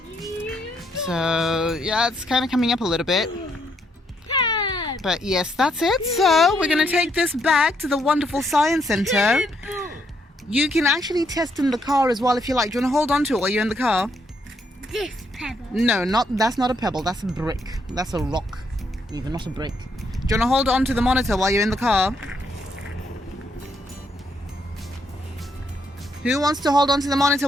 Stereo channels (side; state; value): both; normal; correlation 0.74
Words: So yeah, it's kind of coming up a little bit. But yes, that's it. So we're going to take this back to the wonderful Science Centre. You can actually test in the car as well if you like. Do you want to hold on to it while you're in the car? This pebble. No, that's not a pebble. That's a brick. That's a rock. Even, not a brick. Do you want to hold on to the monitor while you're in the car? Who wants to hold on to the monitor